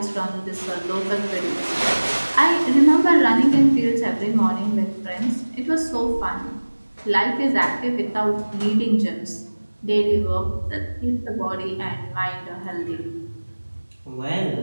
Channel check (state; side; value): inverted; both; correlation -1.00